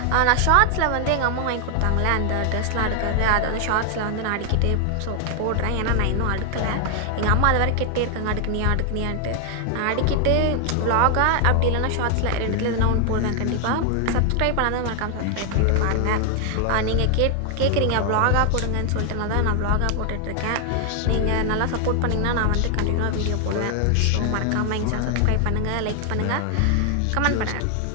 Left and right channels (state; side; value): different; both; correlation 0.00